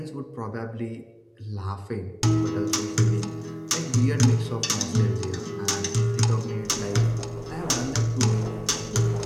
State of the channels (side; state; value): both; identical; correlation 1.00